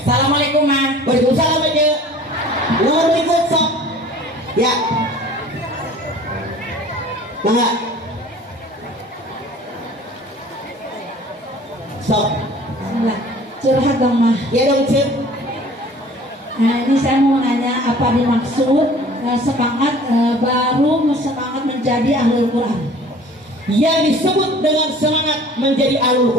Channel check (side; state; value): both; normal; correlation 0.48